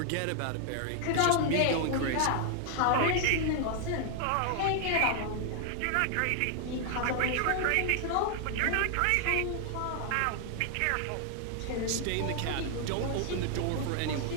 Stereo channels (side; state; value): both; different; correlation 0.00